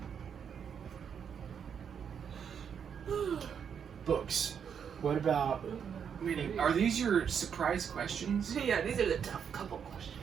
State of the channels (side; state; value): left; quieter; 7.5 dB